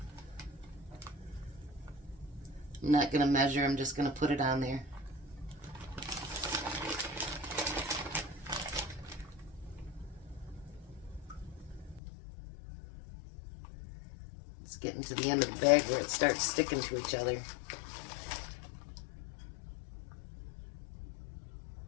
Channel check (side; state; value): right; drops out; at 12.0 s